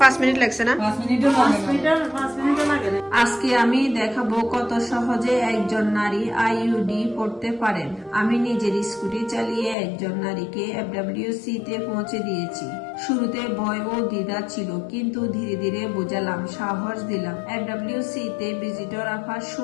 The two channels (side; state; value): right; drops out; at 9.8 s